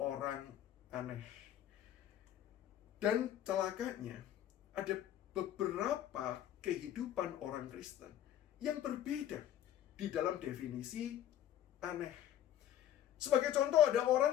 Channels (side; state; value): right; quieter; 11.3 dB